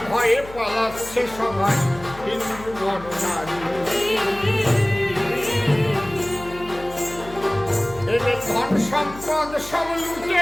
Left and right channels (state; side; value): noise; left; hum, 16 dB below the sound